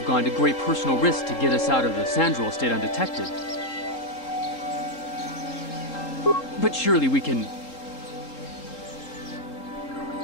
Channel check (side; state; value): right; late; 3.7 ms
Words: gone to great personal risk to get us out of the Sandral estate undetected. But surely we can...